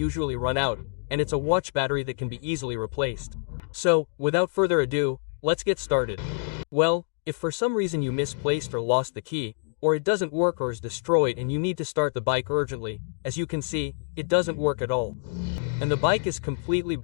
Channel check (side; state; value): right; silent; digital silence